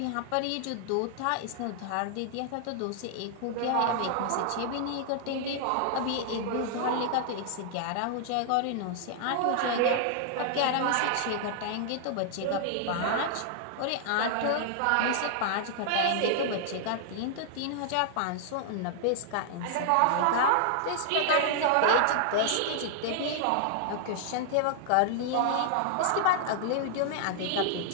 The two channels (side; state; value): both; different; correlation -0.01